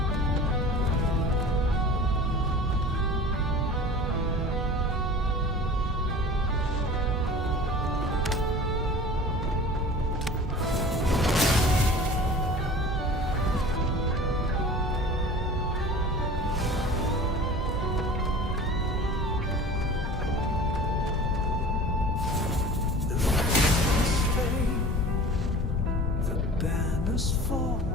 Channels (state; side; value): normal; both; correlation 0.40